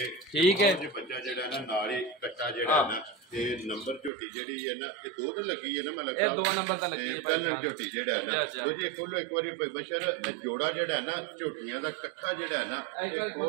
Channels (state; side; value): drops out; left; at 4.1 s